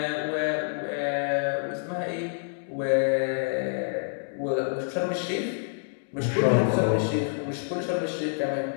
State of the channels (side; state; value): right; silent; digital silence